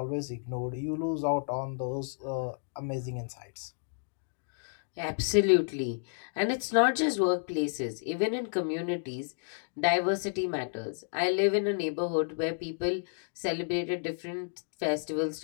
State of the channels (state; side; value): silent; right; digital silence